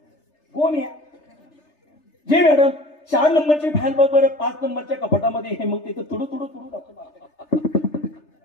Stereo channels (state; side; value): late; right; 3.3 ms